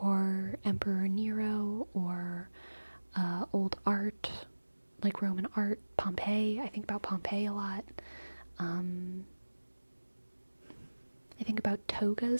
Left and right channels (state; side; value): inverted; both; correlation -1.00